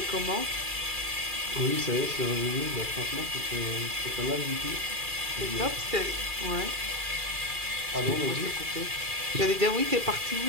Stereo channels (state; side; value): late; left; 2.4 ms